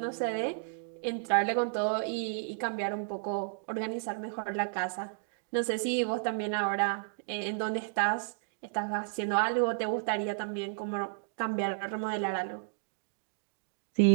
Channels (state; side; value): silent; left; digital silence